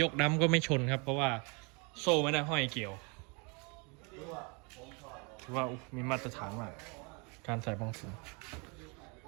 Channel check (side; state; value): left; quieter; 31.7 dB